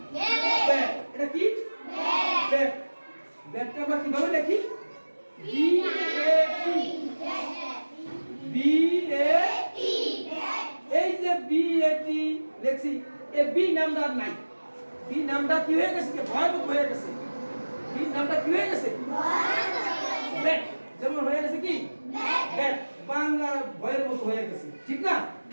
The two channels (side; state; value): both; inverted; correlation -1.00